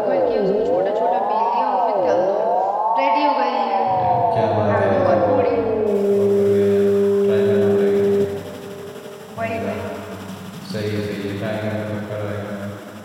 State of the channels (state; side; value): identical; both; correlation 1.00